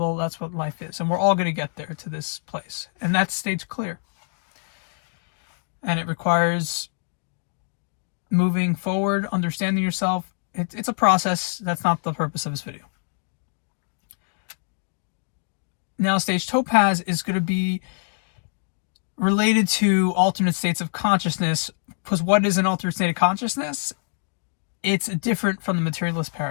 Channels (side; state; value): right; silent; digital silence